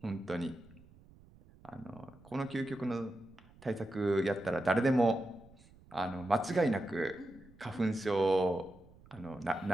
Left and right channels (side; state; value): right; noise; rumble, 25 dB below the sound